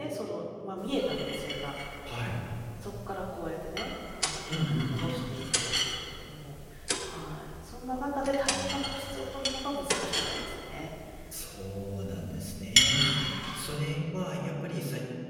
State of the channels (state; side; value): identical; both; correlation 1.00